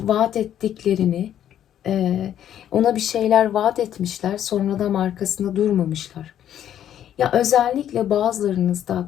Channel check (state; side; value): quieter; right; 10.6 dB